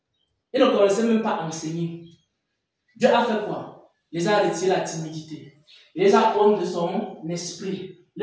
Ils ne connaissaient même pas enseigner. Dieu a fait quoi? Il les a retiré la timidité. Il les a honte de son esprit.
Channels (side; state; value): both; identical; correlation 1.00